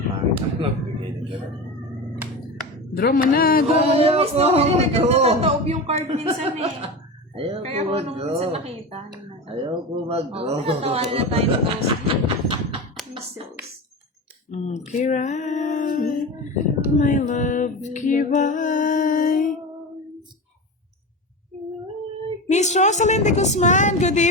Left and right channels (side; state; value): both; normal; correlation 0.25